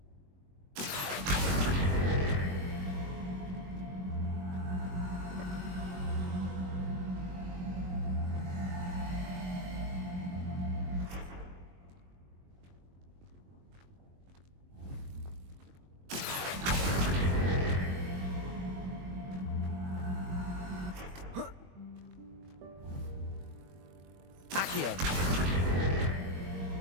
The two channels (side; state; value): left; late; 22 ms